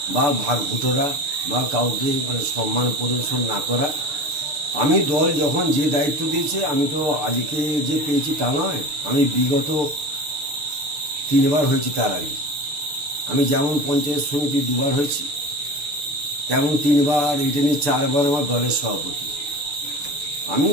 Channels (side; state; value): left; late; 6.8 ms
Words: বা ভাগভুটোরা বা কাউকে সম্মান প্রদর্শন না করা। আমি দল যখন যে দায়িত্ব দিয়েছে, আমি তো আজকে যে পেয়েছি তা নয়, আমি বিগত 3 বার হয়েছি। তার আগে আমি যেমন পঞ্চায়েত সমিতি 2 বার হয়েছি, তেমন 3 বার, এটা নিয়ে 4 বার আমার দলের সভাপতি। আমি